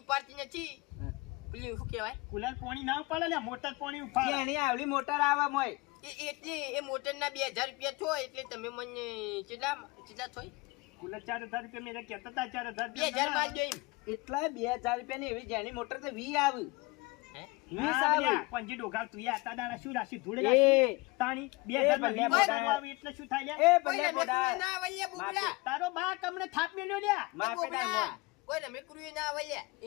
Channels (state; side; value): quieter; right; 24.0 dB